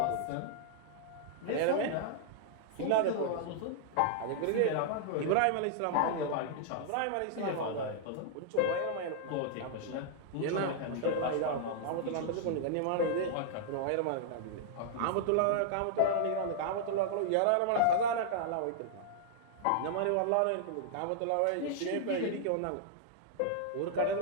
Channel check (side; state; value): both; different; correlation -0.01